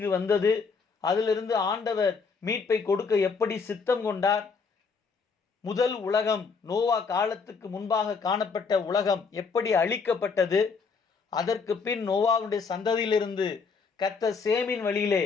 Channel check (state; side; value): quieter; right; 5.1 dB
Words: வந்தது, அதிலிருந்து ஆண்டவர் மீட்பை கொடுக்க எப்படி சித்தம் கொண்டார், முதல் உலகம் நோவா காலத்துக்கு முன்பாக காணப்பட்ட உலகம் எப்படி அழிக்கப்பட்டது, அதற்கு பின் நோவாவுடைய சந்ததியிலிருந்து கர்த்தர் சேமின் வழியிலே